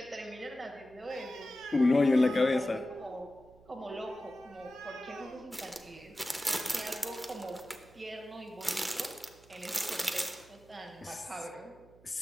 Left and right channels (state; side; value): noise; right; hum, 25 dB below the sound